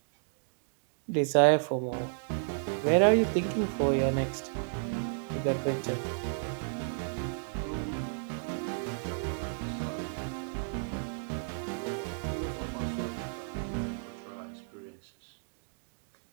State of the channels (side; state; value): left; silent; digital silence